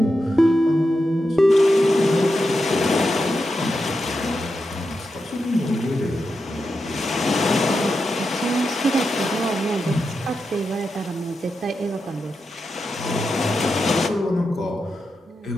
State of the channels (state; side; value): normal; both; correlation 0.88